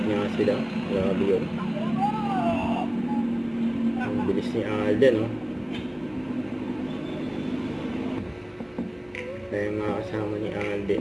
nga sila. Grabe yun. Ang bilis ni Alden, no? Kaya nga kasama ni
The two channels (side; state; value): left; noise; hum, 30 dB below the sound